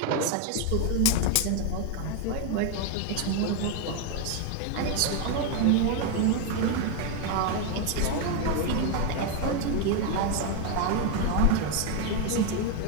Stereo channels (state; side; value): different; both; correlation 0.01